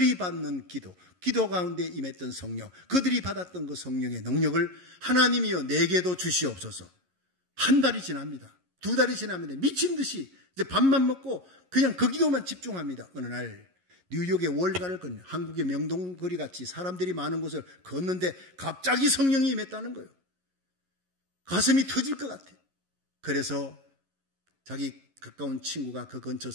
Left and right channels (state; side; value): late; left; 11 ms